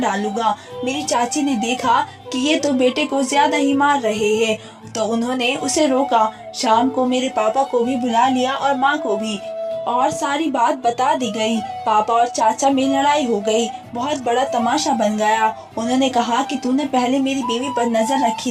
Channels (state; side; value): identical; both; correlation 1.00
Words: मेरी चाची ने देखा कि ये तो बेटे को ज्यादा ही मार रहे हैं, तो उन्होंने उसे रोका। शाम को मेरे पापा को भी बुला लिया और माँ को भी, और सारी बात बता दी गई। पापा और चाचा में लड़ाई हो गई, बहुत बड़ा तमाशा बन गया। उन्होंने कहा कि तूने पहले मेरी बीवी पर नजर रखी